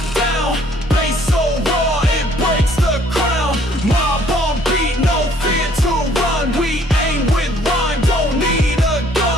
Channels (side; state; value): both; normal; correlation 0.61